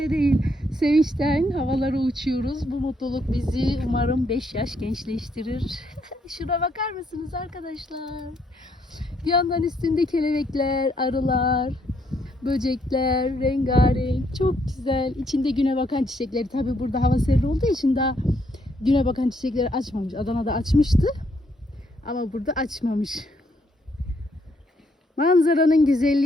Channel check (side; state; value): both; normal; correlation 0.72